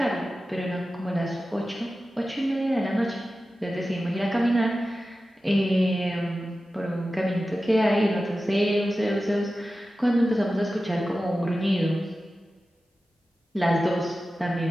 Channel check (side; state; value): both; normal; correlation 0.94